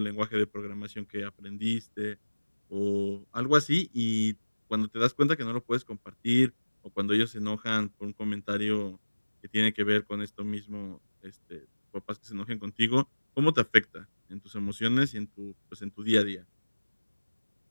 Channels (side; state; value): both; inverted; correlation -1.00